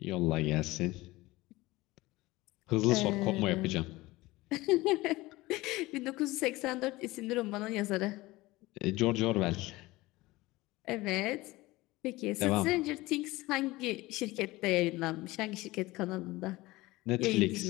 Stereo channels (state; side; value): quieter; right; 19.8 dB